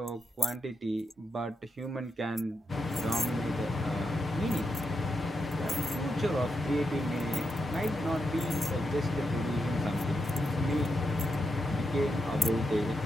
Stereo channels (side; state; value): both; normal; correlation 0.84